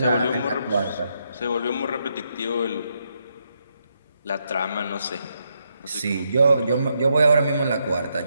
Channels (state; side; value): inverted; both; correlation -0.79